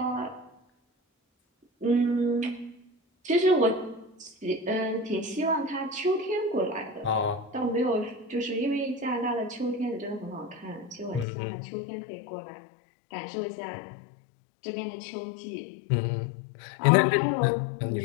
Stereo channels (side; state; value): right; drops out; at 11.2 s